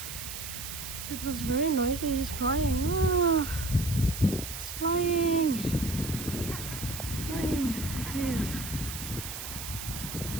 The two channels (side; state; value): right; noise; hiss, 8 dB below the sound